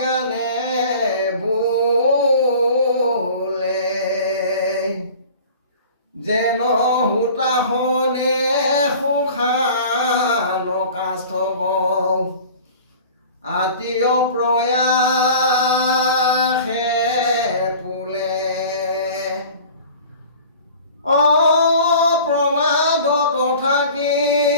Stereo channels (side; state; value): both; inverted; correlation -0.43